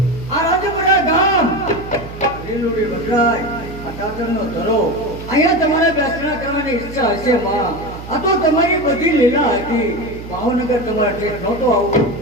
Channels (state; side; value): noise; right; hum, 13 dB below the sound